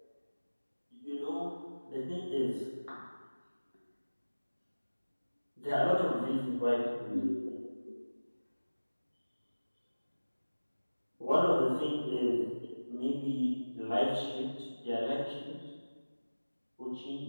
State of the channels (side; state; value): both; inverted; correlation -1.00